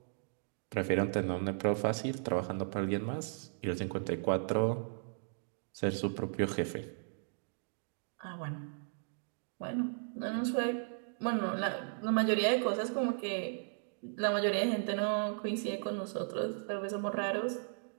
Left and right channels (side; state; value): left; silent; digital silence